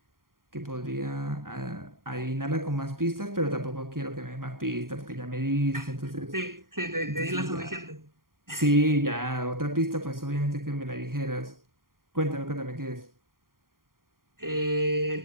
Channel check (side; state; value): left; late; 0.91 ms